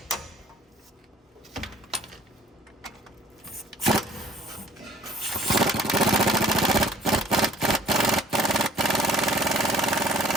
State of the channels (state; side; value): normal; both; correlation 0.53